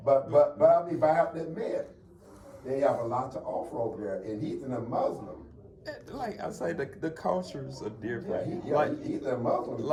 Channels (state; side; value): identical; both; correlation 1.00